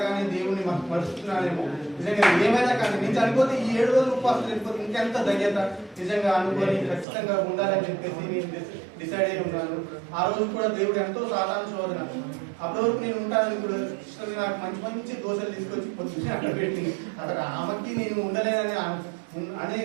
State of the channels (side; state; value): left; drops out; at 7.1 s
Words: దేవుణ్ణి మరుస్తున్నానేమో, నిజంగా ఏమైనా కానీ నేను చనిపోతే ఈ 7 రోజులు ఉపవాసం చనిపోతే ఇంకెంత ధన్యత నిజంగా అనుకొని ఖచ్చితంగా ఉండాలని చెప్పేసి నేను డిసైడ్ అయి ఉన్నాను. ఆ రోజు కూడా దేవుడు ఎంతో సాధారణ శోధన. అప్పటి వరకు నేను ఉంటానని కూడా నాకు మంచి మంచి దోశలు తీసుకొచ్చి పొద్దున్నే అక్కడ పెట్టింది. అక్కడ ఆమెకి నేను ఉండలేనని